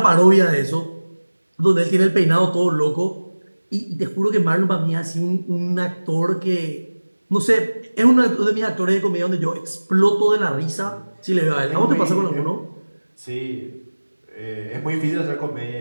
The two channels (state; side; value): inverted; both; correlation -1.00